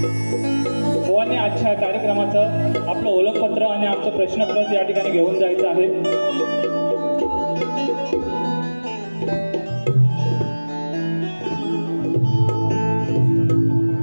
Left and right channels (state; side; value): inverted; both; correlation -1.00